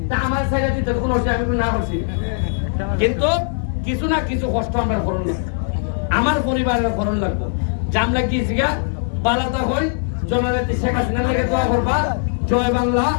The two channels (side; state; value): right; silent; digital silence